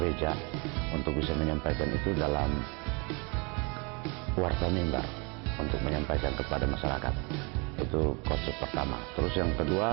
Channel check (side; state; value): left; quieter; 31.0 dB